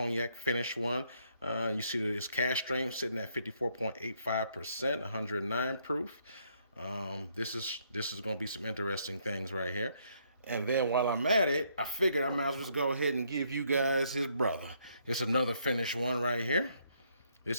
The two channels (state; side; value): inverted; both; correlation -0.71